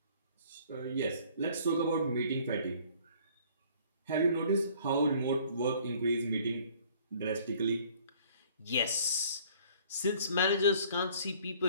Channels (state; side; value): inverted; both; correlation -0.55